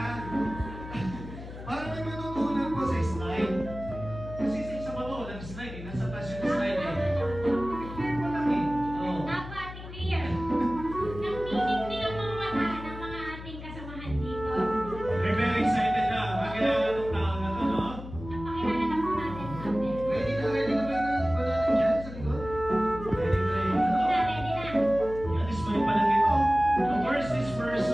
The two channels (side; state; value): left; noise; hum, 12 dB below the sound